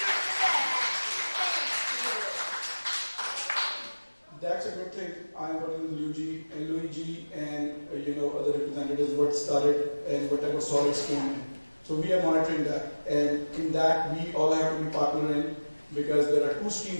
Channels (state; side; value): inverted; both; correlation -1.00